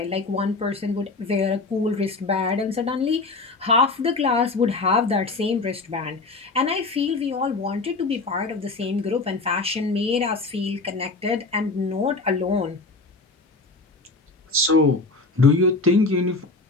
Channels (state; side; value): quieter; right; 3.6 dB